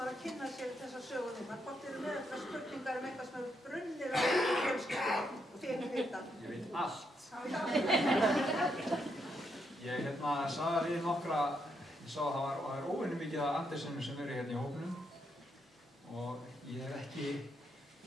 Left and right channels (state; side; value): normal; both; correlation 0.78